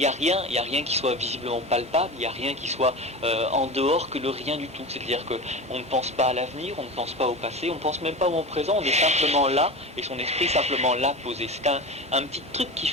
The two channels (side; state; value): both; normal; correlation 0.29